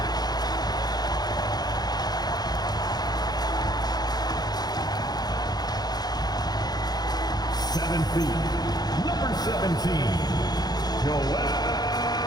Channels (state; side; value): late; right; 0.19 ms